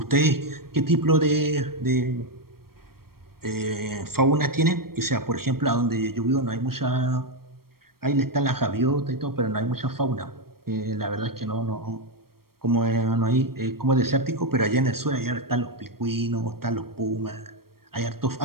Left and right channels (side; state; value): left; late; 0.94 ms